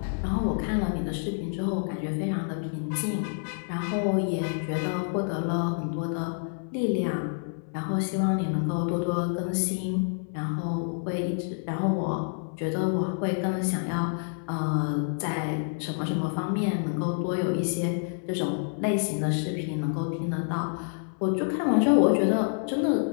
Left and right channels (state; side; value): silent; right; 59 dB below the other